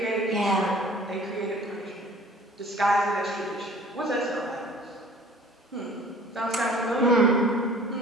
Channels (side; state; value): both; normal; correlation 0.49